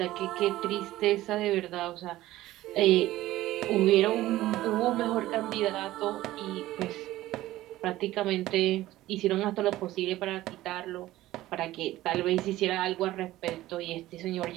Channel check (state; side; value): quieter; left; 15.9 dB